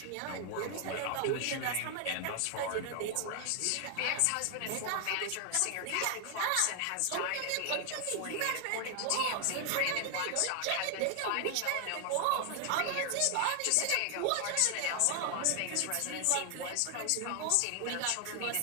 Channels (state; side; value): different; both; correlation 0.00